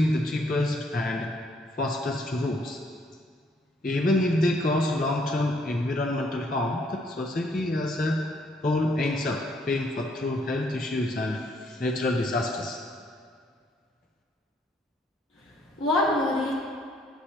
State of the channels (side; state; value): both; normal; correlation 0.68